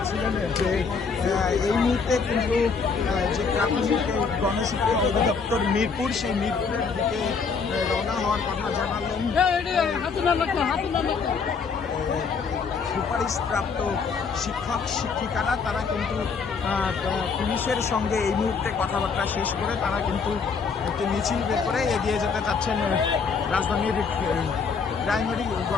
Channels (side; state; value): right; quieter; 5.3 dB